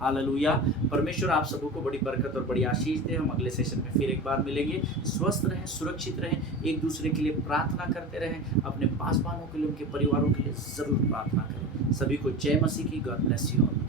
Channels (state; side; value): normal; both; correlation 0.30